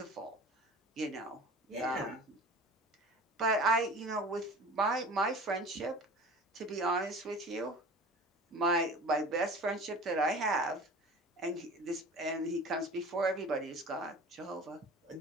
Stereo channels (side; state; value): both; normal; correlation 0.40